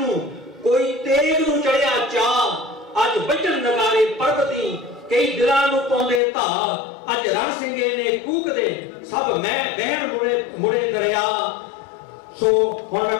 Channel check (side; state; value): right; drops out; at 6.2 s